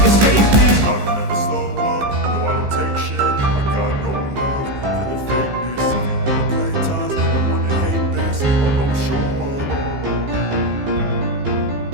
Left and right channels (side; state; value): left; late; 15 ms